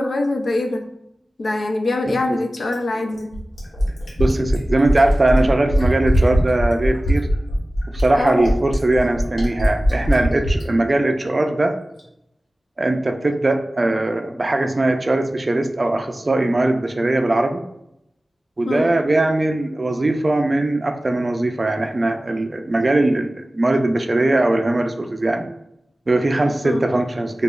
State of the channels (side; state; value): both; normal; correlation 0.96